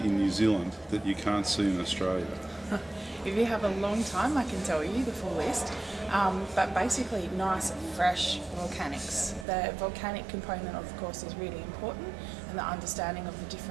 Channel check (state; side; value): drops out; left; at 9.5 s